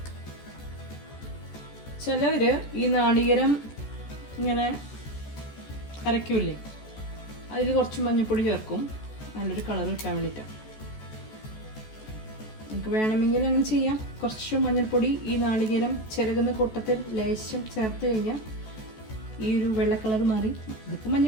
ചിലവർ ഈ നാളികേരം ഇങ്ങനെ അരയ്ക്കൂലേ, അതിൽ കുറച്ച് മഞ്ഞൾപ്പൊടി ചേർക്കും, നല്ലൊരു കളർ കിട്ടാൻ വേണ്ടിയിട്ടാണ്. നമുക്ക് വേണമെങ്കിൽ അങ്ങനെ ചെയ്യാം. കുറച്ച് മഞ്ഞൾപ്പൊടി ഈ നാളികേരം ചിരകുന്ന കൂട്ടത്തിൽ ലേശം ചേർത്ത് കഴിഞ്ഞാൽ ഈ ഒരു വെള്ള കളർ മാറി ഇതിപ്പോൾ മഞ്ഞ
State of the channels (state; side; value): late; right; 14 ms